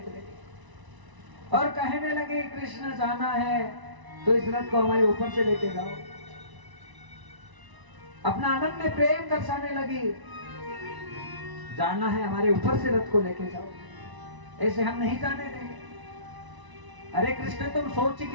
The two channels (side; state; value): left; late; 1.0 ms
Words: गई और कहने लगे कृष्ण जाना है तो इस रथ को हमारे ऊपर से लेके जाओ। अपना आनंद में प्रेम दर्शाने लगी, जाना है हमारे ऊपर से रथ को लेके जाओ, ऐसे हम नहीं जाने देंगे। अरे कृष्ण तुम सोच ही